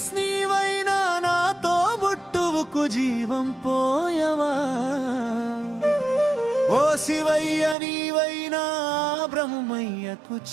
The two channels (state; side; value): drops out; left; at 7.8 s